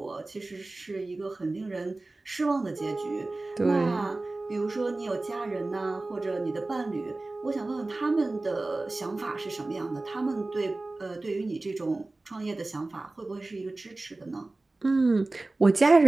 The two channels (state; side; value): quieter; left; 3.1 dB